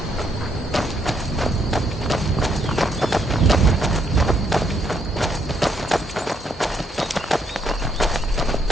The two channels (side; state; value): both; normal; correlation 0.73